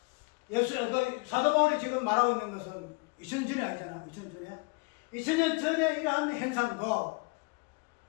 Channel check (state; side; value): quieter; right; 29.7 dB